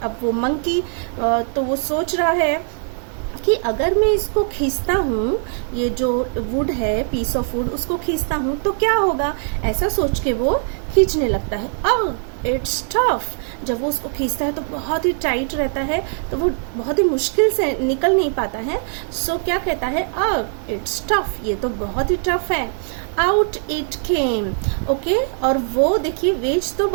अब वो मंकी तो वो सोच रहा है कि अगर मैं इसको खींचता हूँ, ये जो वुड है, पीस ऑफ वुड, उसको खींचता हूँ तो क्या होगा, ऐसा सोच के वो खींचने लगता है। It's tough. जब वो उसको खींचता है तो बहुत ही टाइट रहता है, तो वो बहुत ही मुश्किल से निकल नहीं पाता है। सो क्या कहता है? इट्स टफ, ये तो बहुत ही टफ है। Out it came. ओके, और वो देखिए वेज तो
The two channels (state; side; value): silent; left; 64 dB below the other